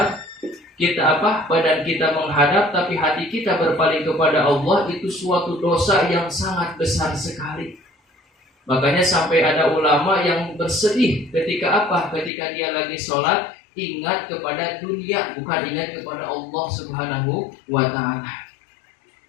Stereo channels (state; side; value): drops out; right; at 12.3 s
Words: kita badan kita menghadap, tapi hati kita berpaling kepada Allah, itu suatu dosa yang sangat besar sekali. Makanya sampai ada ulama yang bersedih ketika ketika dia lagi sholat, ingat kepada dunia, bukan ingat kepada Allah Subhanahu wa taala.